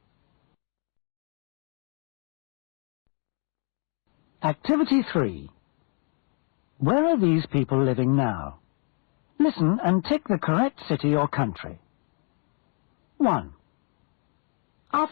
Activity 3. Where are these people living now? Listen and tick the correct city or country. 1,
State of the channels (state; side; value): quieter; right; 39.7 dB